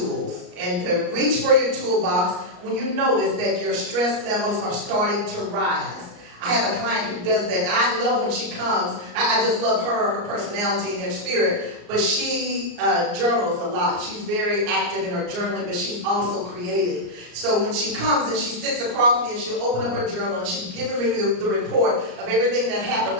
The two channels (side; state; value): left; late; 34 ms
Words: and to reach for your toolbox when you notice that your stress levels are starting to rise. I have a client who does that. I love when she comes. I just love her personality and her spirit. But she journals a lot. She's very active in her journaling, but she's also creative. So when she comes and she sits across me and she'll open up her journal and she's giving me the report of everything that